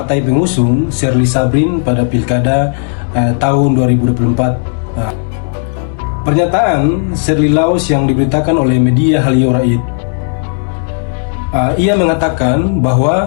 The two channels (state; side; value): silent; right; digital silence